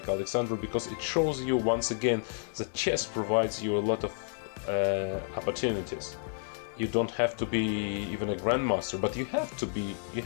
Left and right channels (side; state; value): right; silent; digital silence